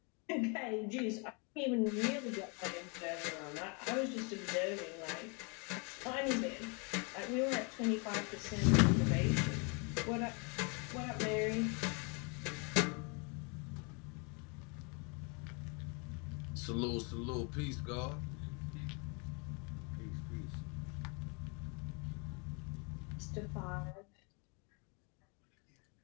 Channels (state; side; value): quieter; right; 33.7 dB